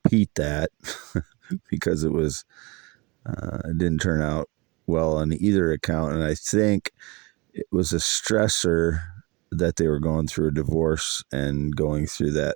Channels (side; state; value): left; quieter; 26.4 dB